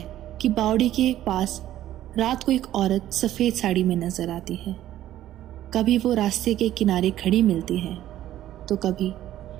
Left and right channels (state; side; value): quieter; left; 12.9 dB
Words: कि बावड़ी के पास रात को एक औरत सफ़ेद साड़ी में नजर आती है। कभी वो रास्ते के किनारे खड़ी मिलती है तो कभी